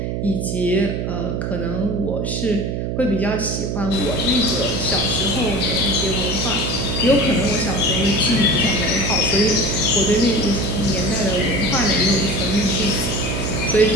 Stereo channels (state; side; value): noise; right; hum, 2 dB below the sound